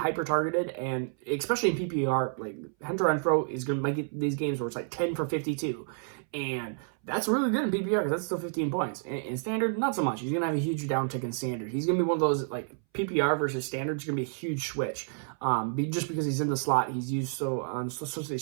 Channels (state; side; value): silent; left; 58 dB below the other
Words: and especially in PPR, like, Hunter Renfrow is going to make these games where it's like 10 for 52. And that's really good in PPR because that's still 15 points. In standard, not so much. He's going to have a huge downtick in standard. He's going to be one of those, like, PPR versus standard is going to be a huge switch. Just because he's in the slot, he's used so